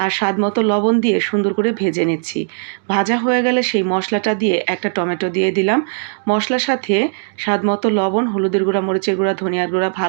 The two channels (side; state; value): left; silent; digital silence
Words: আর স্বাদমতো লবণ দিয়ে সুন্দর করে ভেজে নিচ্ছি। ভাজা হয়ে গেলে সেই মশলাটা দিয়ে একটা টমেটো দিয়ে দিলাম। মশলার সাথে স্বাদমতো লবণ, হলুদের গুঁড়া, মরিচের গুঁড়া, ধনিয়ার গুঁড়া